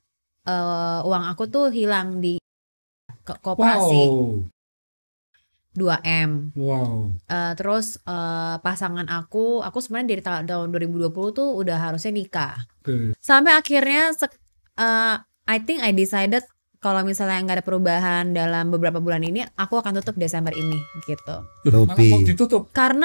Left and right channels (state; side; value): inverted; both; correlation -1.00